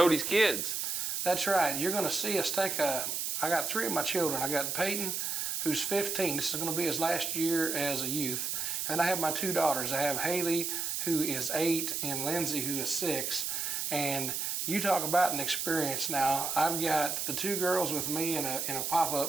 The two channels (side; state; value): right; noise; hiss, 1 dB below the sound